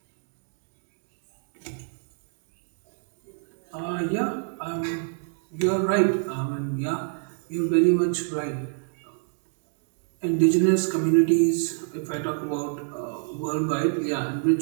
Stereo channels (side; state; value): left; silent; 58 dB below the other